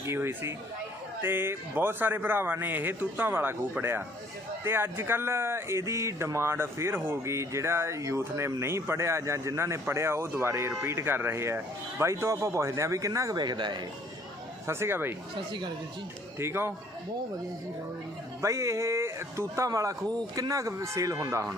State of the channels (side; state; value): both; normal; correlation 0.60